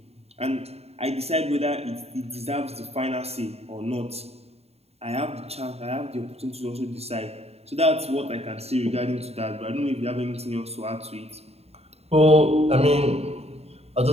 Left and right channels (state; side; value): late; left; 0.30 ms